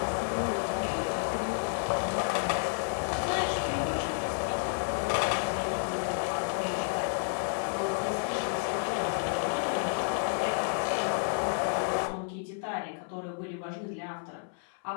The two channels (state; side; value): silent; right; 57 dB below the other